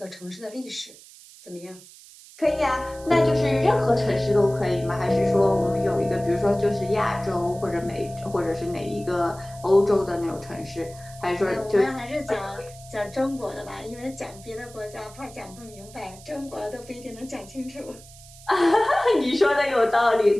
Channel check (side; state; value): right; noise; hiss, 21 dB below the sound